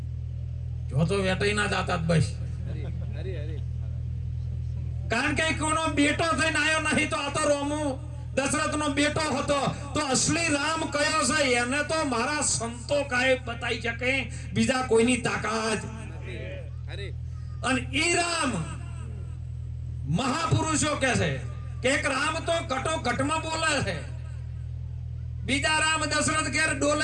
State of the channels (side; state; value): both; identical; correlation 1.00